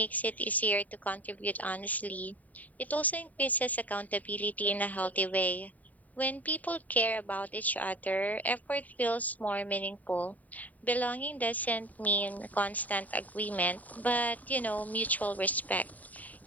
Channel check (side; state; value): right; late; 0.074 ms